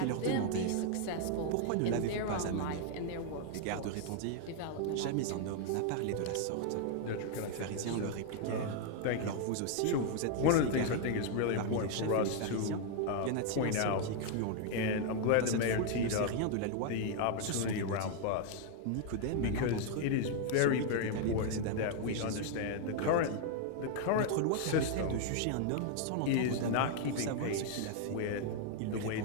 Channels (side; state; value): both; different; correlation 0.00